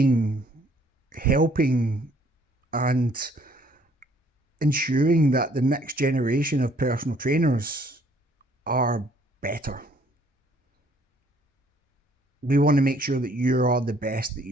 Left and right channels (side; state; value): both; normal; correlation 0.62